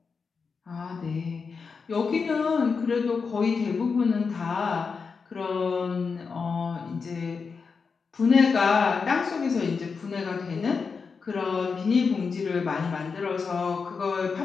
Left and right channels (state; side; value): quieter; right; 5.2 dB